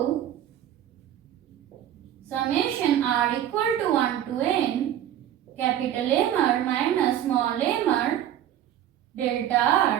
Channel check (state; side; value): quieter; left; 11.2 dB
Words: summation r equal to 1 to n capital M r minus small m r delta